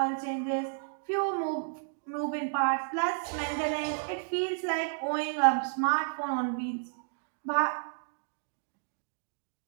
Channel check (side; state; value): left; silent; 56 dB below the other